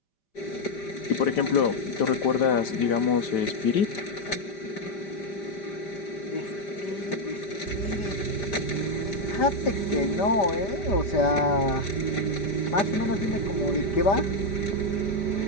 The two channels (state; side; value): late; right; 5.1 ms